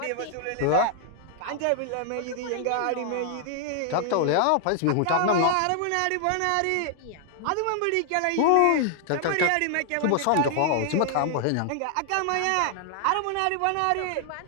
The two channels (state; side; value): different; both; correlation 0.00